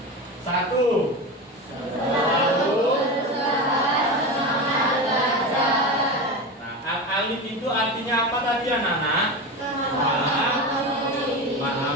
1. Selalu semangat belajar. Nah, Al-Alim itu artinya apa tadi anak-anak? Maha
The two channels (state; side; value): normal; both; correlation 0.23